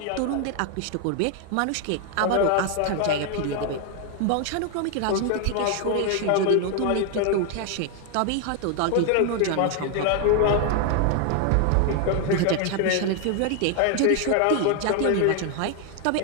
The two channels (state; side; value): different; both; correlation 0.01